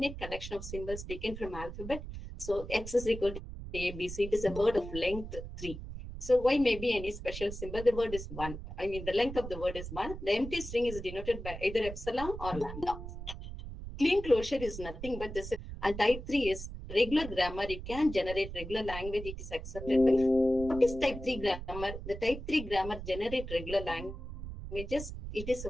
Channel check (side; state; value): right; noise; rumble, 9 dB below the sound